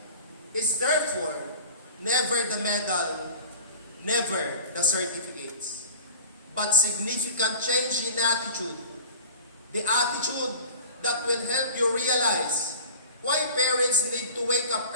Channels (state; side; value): inverted; both; correlation -0.38